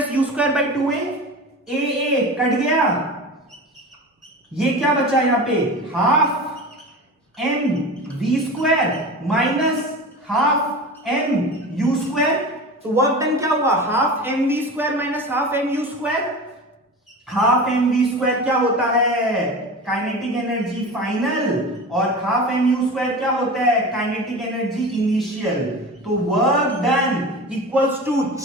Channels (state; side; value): normal; both; correlation 0.31